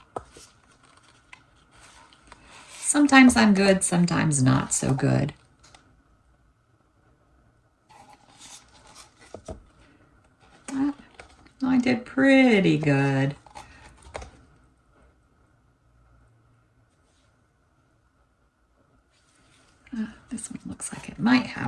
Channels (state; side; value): identical; both; correlation 1.00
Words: Sometimes I'm good, sometimes not so good. I did pretty good. This one looks like it might